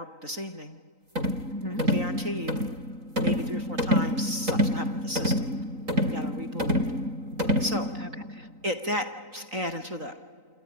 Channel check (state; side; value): late; left; 3.9 ms